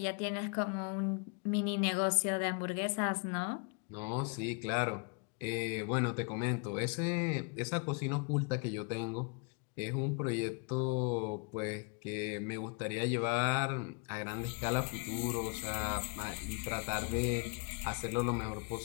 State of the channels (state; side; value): quieter; right; 36.2 dB